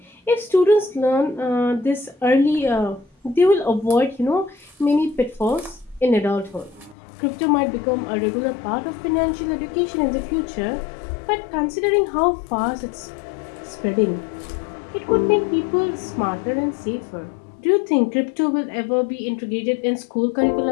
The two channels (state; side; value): drops out; right; at 7.0 s